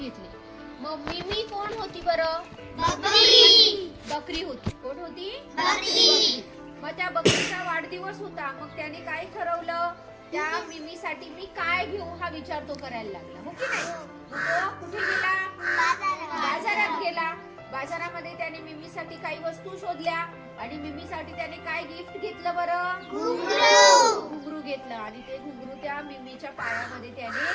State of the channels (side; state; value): both; identical; correlation 1.00